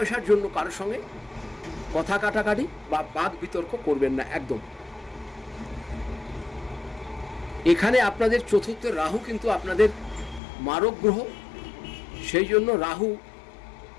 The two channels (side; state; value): right; drops out; at 10.4 s